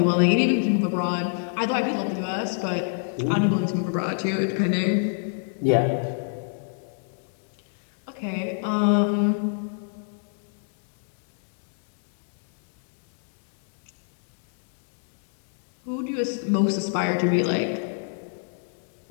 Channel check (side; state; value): right; silent; digital silence